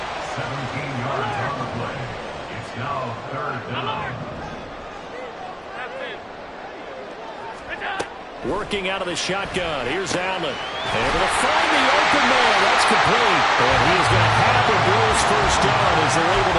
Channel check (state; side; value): identical; both; correlation 1.00